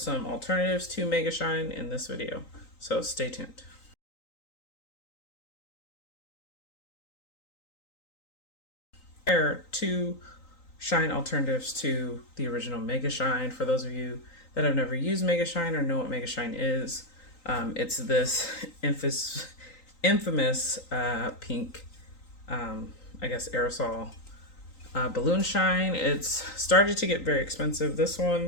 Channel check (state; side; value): late; right; 3.9 ms